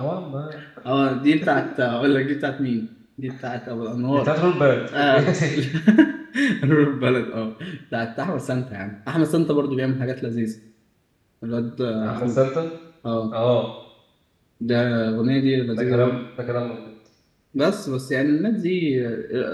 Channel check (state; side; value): identical; both; correlation 1.00